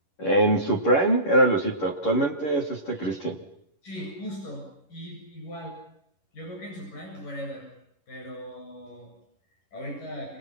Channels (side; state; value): right; late; 11 ms